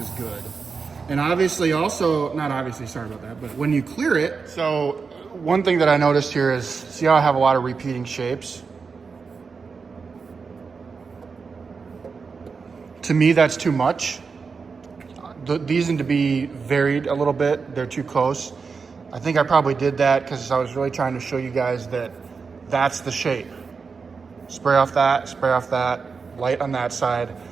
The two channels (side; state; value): left; quieter; 5.1 dB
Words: good. And obviously also, not obviously, sorry about that, but when you clear it, so one thing that I noticed here is, see how I have a lot of repeating shapes? To me, that's too much. These need to be varied a little bit, they're too close. I think I probably did that because I was really trying to show you guys that that's the shape. Spray off that, light on that side,